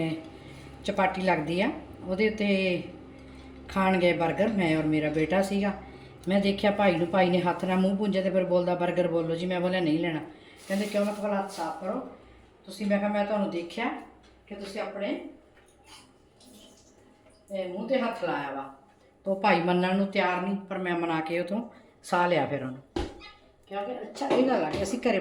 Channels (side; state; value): both; identical; correlation 1.00